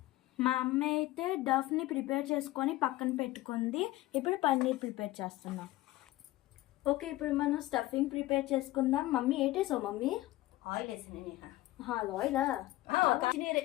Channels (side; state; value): right; quieter; 17.4 dB